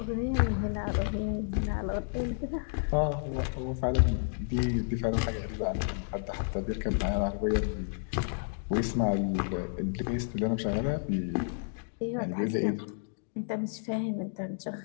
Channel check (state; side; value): silent; right; digital silence